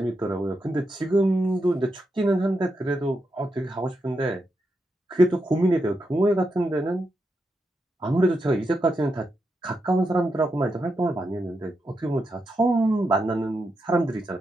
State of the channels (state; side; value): normal; both; correlation 0.85